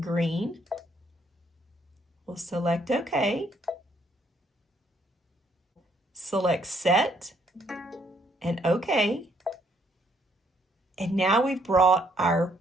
We'll select OK. Select set and OK. And now we've brought our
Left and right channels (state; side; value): normal; both; correlation 0.69